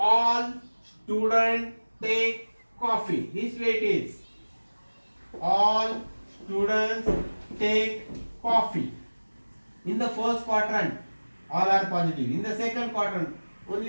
students take coffee. This way it is. All students take coffee. In the first quadrant, all are positive. In the second quadrant,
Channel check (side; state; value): both; inverted; correlation -1.00